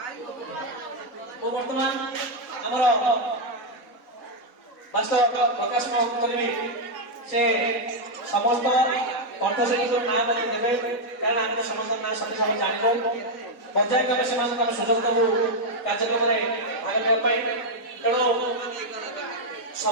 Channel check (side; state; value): right; late; 3.9 ms